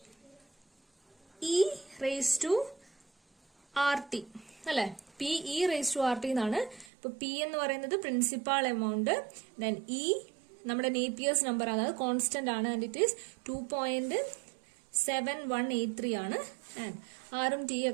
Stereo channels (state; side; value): drops out; left; at 6.9 s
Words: E raise to R T അല്ലെ? P E raise to R T എന്നാണ്. ഇപ്പൊ പി എന്ന് പറയുന്നത് പ്രിൻസിപ്പാൾ എമൗണ്ട്, ദെൻ ഇ നമ്മുടെ നേപ്പിയേഴ്സ് നമ്പർ ആണ്, അത് കോൺസ്റ്റന്റ് ആണ്. ആൻഡ് ഇറ്റ് ഈസ് 2.7183 ആണ്. ആൻഡ് ആറും ടി